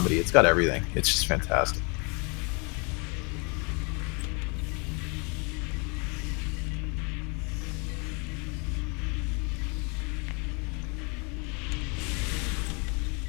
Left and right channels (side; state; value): right; quieter; 32.9 dB